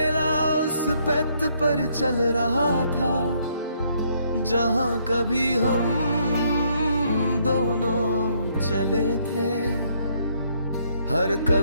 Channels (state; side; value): inverted; both; correlation -0.70